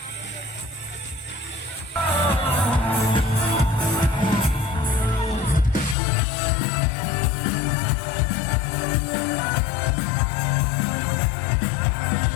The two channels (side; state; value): right; drops out; at 6.0 s